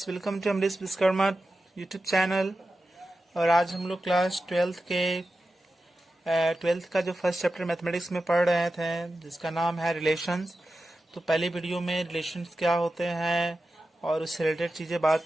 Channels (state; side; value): normal; both; correlation 0.92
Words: welcome to Amrish Vishwakarma YouTube channel. और आज हम लोग क्लास ट्वेल्थ का जो फर्स्ट चैप्टर मैथमेटिक्स में पढ़ रहे थे, जिसका नाम है रिलेशंस। तो पहली वीडियो में रिलेशंस क्या होते हैं और उससे रिलेटेड